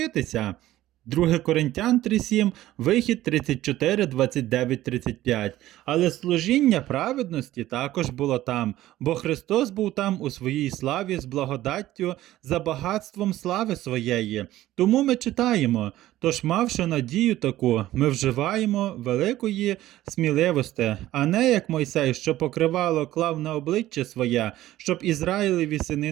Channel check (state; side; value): quieter; left; 14.9 dB